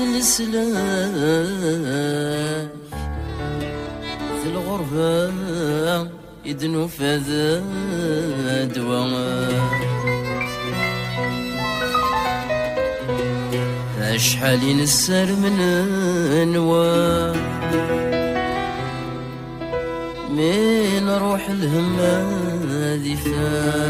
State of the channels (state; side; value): identical; both; correlation 1.00